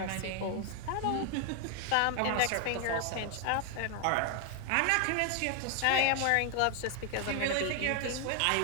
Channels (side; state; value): both; different; correlation 0.00